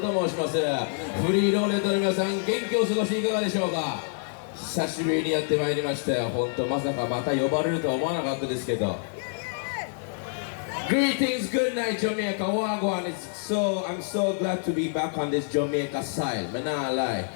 申します。フリーローレットの皆さん、元気を過ごしていかがでしょうか。久しぶりにやってまいりましたよ。本当まさかまた呼ばれるとは思わなかったですけど。Greetings, good night, Jamaica. Wagwan. I'm so glad to be back on this Jamaica side. Man, nah lie.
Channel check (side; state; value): right; silent; digital silence